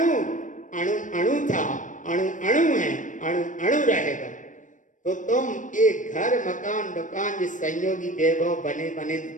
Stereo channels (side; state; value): right; late; 0.37 ms